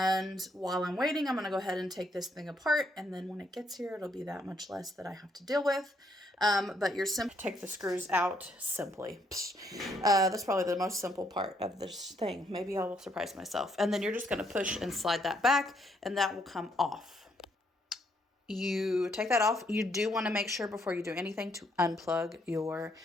while I'm waiting, I'm going to go ahead and take this thing apart. And then when it gets here, it'll be that much less that I have to deal with. But you're simply take the screws out simply. That's probably the most simple part of this thing. Maybe I will surprise myself. And then you're just going to push and slide that back and that will come off. You take that off. You do want to make sure before you do anything to unplug your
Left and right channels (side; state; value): both; normal; correlation 0.72